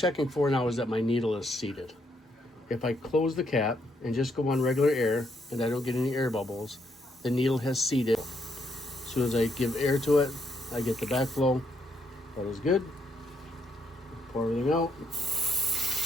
for now is that my needle is seated. If I close the cap and just go on regular air and I don't get any air bubbles, the needle has seated. As soon as I give air to it, I get the backflow. That is good. Pour everything out.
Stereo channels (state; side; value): normal; both; correlation 0.75